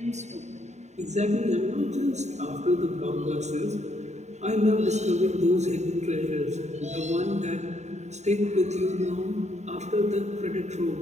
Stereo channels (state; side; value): late; left; 0.33 ms